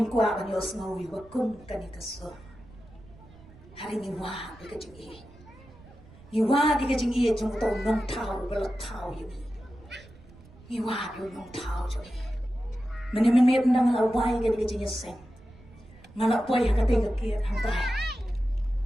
kwa kan yos ngawi wakum kanikaso hari ngiwa di kajing i. Ngiwa di kajing i jung tau nong tau belat tau yumi. Ngiwa di nong tau jung i. Meni nang lawai ke di kajing seng. Ngalak boy hakate ke hantai.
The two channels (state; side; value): noise; right; rumble, 22 dB below the sound